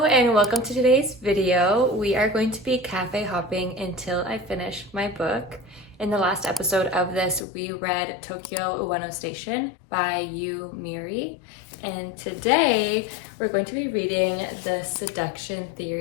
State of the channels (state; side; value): drops out; right; at 7.5 s